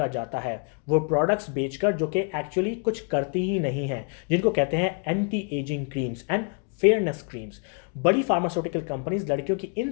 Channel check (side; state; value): right; quieter; 38.7 dB